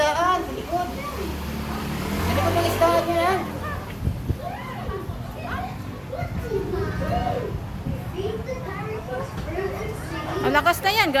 sa likod. Sa likod ng isdaan yun ha. Ang lakas na yan.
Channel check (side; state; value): both; identical; correlation 1.00